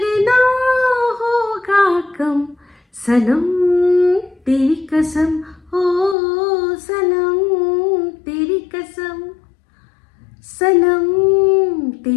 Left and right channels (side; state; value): right; drops out; at 6.2 s